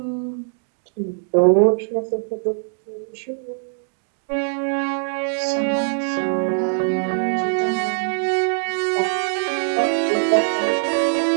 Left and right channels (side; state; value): left; silent; 64 dB below the other